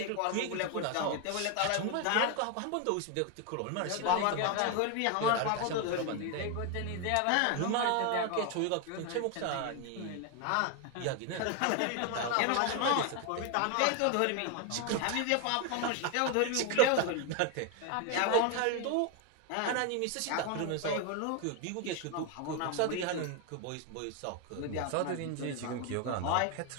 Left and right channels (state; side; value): different; both; correlation 0.01